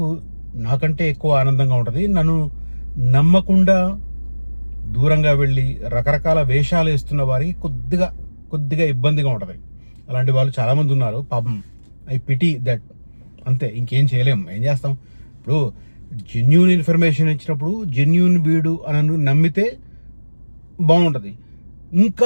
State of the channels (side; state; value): both; inverted; correlation -1.00